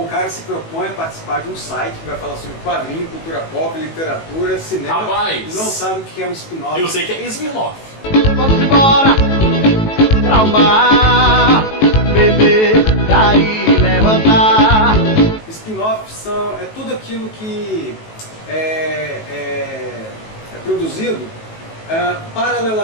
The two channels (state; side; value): late; right; 18 ms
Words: cara se propõe a participar de um site que vai falar sobre quadrinho, cultura pop, literatura, cinema. Rapaz! E não sabe o que é um spin-off. Eu sei que é spin-off. Vamos embora pra o mar, beber, cair, levantar. Spin-off é tudo aquilo que é produzido